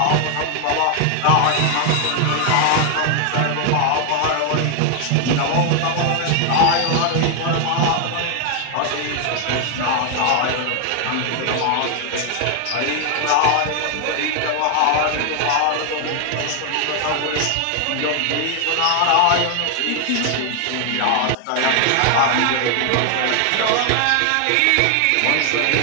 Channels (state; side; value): different; both; correlation 0.00